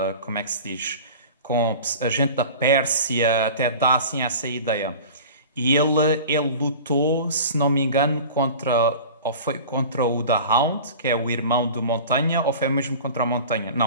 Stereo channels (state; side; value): inverted; both; correlation -0.38